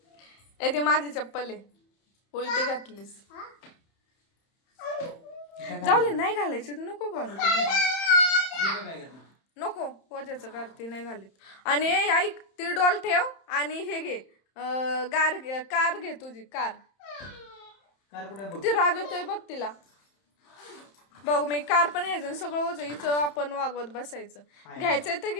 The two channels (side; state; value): right; late; 31 ms